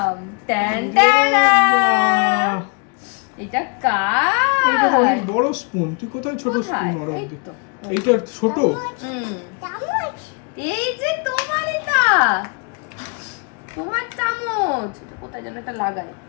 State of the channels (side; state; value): right; quieter; 35.9 dB